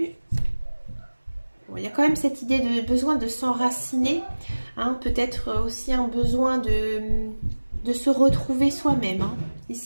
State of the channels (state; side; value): inverted; both; correlation -1.00